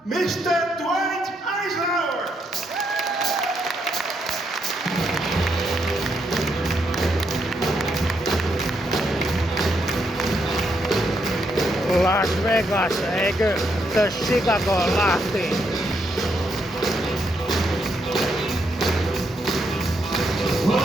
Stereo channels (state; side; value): normal; both; correlation 0.77